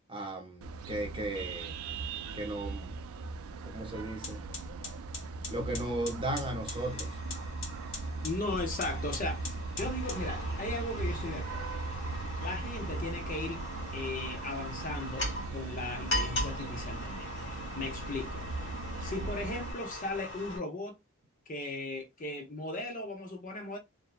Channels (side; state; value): both; normal; correlation 0.38